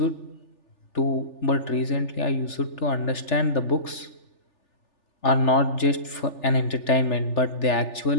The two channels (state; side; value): late; right; 3.4 ms